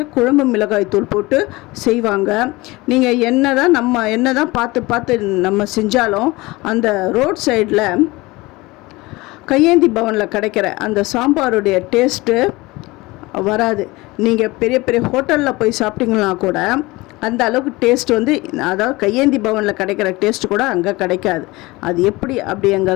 குழம்பு மிளகாய்த்தூள் போட்டு செய்வாங்க. நீங்கள் என்ன தான் பார்த்து நம்ம செஞ்சாலும் அந்த ரோட் சைடில் கையேந்தி பவனில் கிடைக்கிற அந்த சாம்பாருடைய டேஸ்ட்டு வராது. நீங்கள் பெரிய பெரிய ஹோட்டலில் போய் சாப்பிட்டீங்கன்னா கூட அந்த அளவுக்கு டேஸ்ட் அதாவது கையேந்தி பவனில் கிடைக்கிற டேஸ்ட்டு கூட அங்கே கிடைக்காது. அது எப்படி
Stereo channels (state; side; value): quieter; right; 21.7 dB